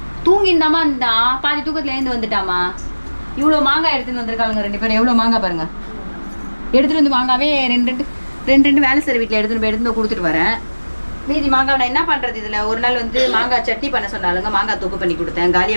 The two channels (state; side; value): inverted; both; correlation -1.00